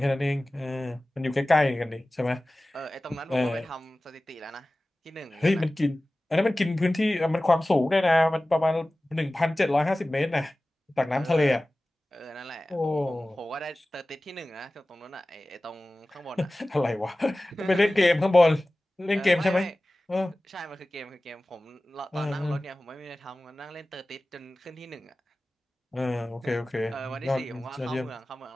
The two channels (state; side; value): normal; both; correlation 0.97